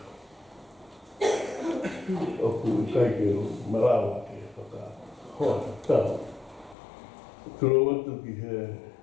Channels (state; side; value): drops out; right; at 6.8 s